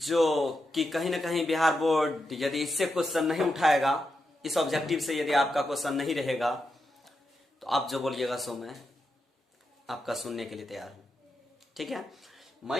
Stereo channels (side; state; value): both; normal; correlation 0.86